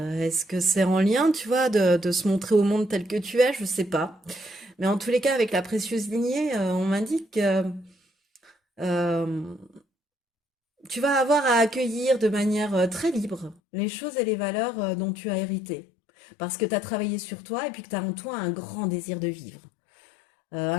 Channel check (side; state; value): right; drops out; at 13.6 s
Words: est-ce que c'est en lien, tu vois, de se montrer au monde tel que tu es, je sais pas. Mais en tous les cas, avec la précieuse lignée, on m'indique que euh, tu vas avoir à accueillir de manière très libre les choses et les valeurs dont tu as hérité. Parce que tu as travaillé sur toi et puis que tu as en toi un grand désir de vivre.